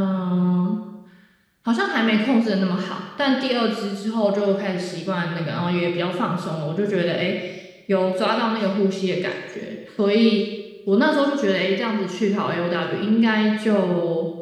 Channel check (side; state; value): both; identical; correlation 1.00